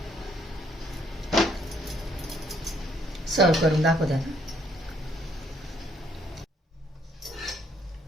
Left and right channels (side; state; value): both; normal; correlation 0.68